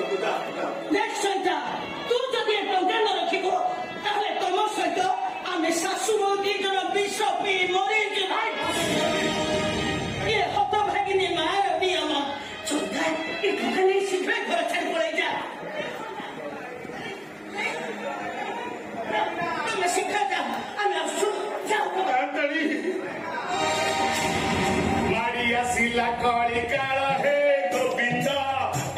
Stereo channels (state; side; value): identical; both; correlation 1.00